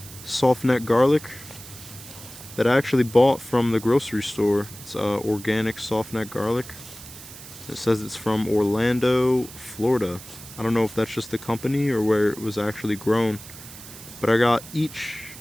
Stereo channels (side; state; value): right; noise; hiss, 16 dB below the sound